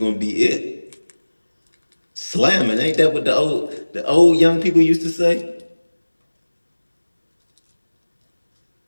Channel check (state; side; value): inverted; both; correlation -1.00